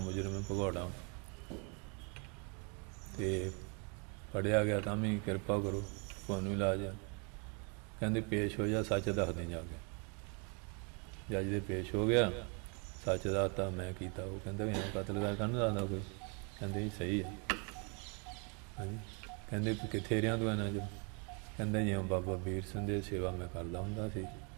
ਹੈ, ਭਗੌੜਾ, ਅਤੇ ਫੜਿਆ ਗਿਆ ਤਾਂ ਵੀ ਕਿਰਪਾ ਕਰੋ, ਤੁਹਾਨੂੰ ਇਲਾਜ ਆ। ਕਹਿੰਦੇ ਪੇਸ਼ ਹੋ ਜਾ, ਸੱਚ ਦੱਸਦੇ ਜਾ ਕੇ। ਜੱਜ ਦੇ ਪੇਸ਼ ਹੋ ਗਿਆ, ਸੱਚ ਦੱਸਤਾ ਮੈਂ ਕੀਤਾ। ਉਹ ਕਹਿੰਦਾ ਵੀ ਐਂ ਕਤਲ ਕਰ ਕਾਹਨੂੰ ਦੱਸਦਾ ਕੋਈ? ਕਹਿੰਦੇ ਜੀ ਸਹੀ ਹੈ। ਹਾਂਜੀ। ਕਹਿੰਦੇ ਕਿੱਥੇ ਰਿਹਾ ਤੂੰ ਇਹਨਾਂ 'ਚ? ਕਹਿੰਦਾ ਜਿਉਂ ਬਾਬਾ ਵੀਰ ਸਿੰਘ ਦੀ ਸੇਵਾ ਮੈਂ ਕਰਦਾ ਹੁੰਦਾ ਸੀ,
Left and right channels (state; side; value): quieter; left; 35.6 dB